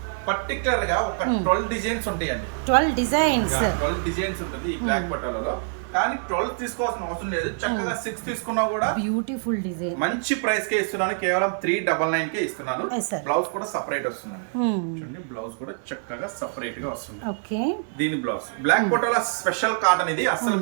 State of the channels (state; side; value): silent; left; 62 dB below the other